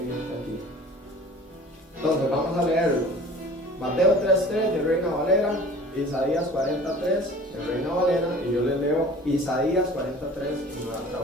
aquí. Entonces, vamos a leer Mateo 3:3 de Reina Valera, Isaías 43 de Reina Valera, y yo les leo Isaías 43 en nueva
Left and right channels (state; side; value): normal; both; correlation 0.45